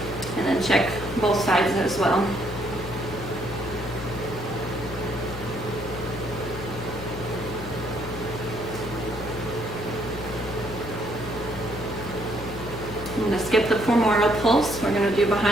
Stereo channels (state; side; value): noise; left; hum, 10 dB below the sound